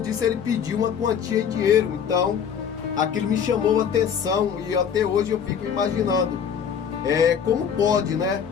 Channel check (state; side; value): quieter; right; 7.6 dB